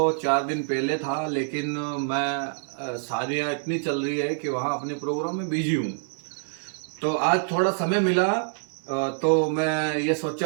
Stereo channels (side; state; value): left; silent; 61 dB below the other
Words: 4 दिन पहले था, लेकिन मैं शादियाँ इतनी चल रही है कि वहाँ अपने प्रोग्राम में बिजी हूँ। तो आज थोड़ा समय मिला, तो मैं ये